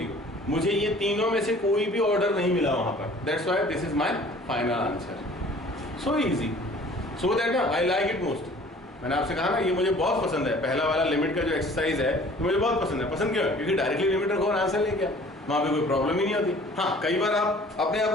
0। मुझे ये तीनों में से कोई भी ऑर्डर नहीं मिला वहाँ पर, that's why this is my final answer. So easy, so that I like it most. मैंने आपसे कहा ना ये मुझे बहुत पसंद है, पहला वाला लिमिट का जो एक्सरसाइज है तो मुझे बहुत पसंद है। पसंद क्यों है? क्योंकि डायरेक्टली लिमिट रखो और आंसर लेके आओ, वहाँ पे कोई प्रॉब्लम ही नहीं होती। हाँ, कई बार आप अपने आप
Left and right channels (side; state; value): both; normal; correlation 0.50